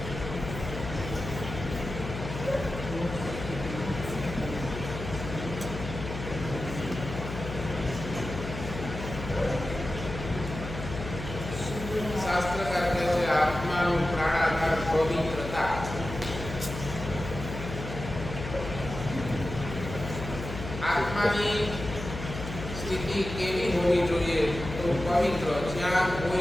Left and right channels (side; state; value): left; noise; hum, 8 dB below the sound